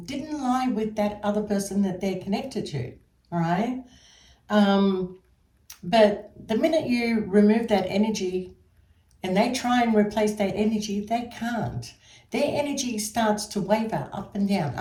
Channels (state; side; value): identical; both; correlation 1.00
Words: didn't lie with that other person that they're connected to, all right? But the minute you remove that energy and they try and replace that energy, they can't. Their energy starts to waver up and down,